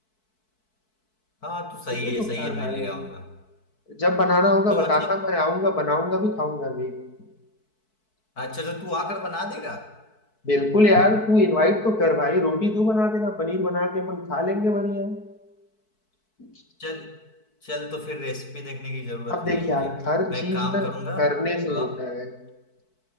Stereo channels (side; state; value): right; late; 4.6 ms